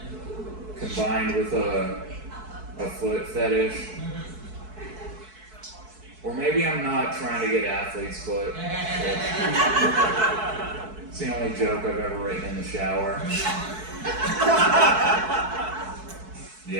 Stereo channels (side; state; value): left; late; 4.6 ms